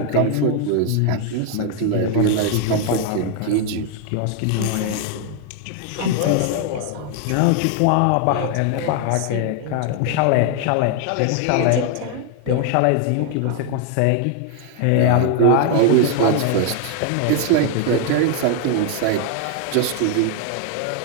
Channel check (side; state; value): both; different; correlation 0.00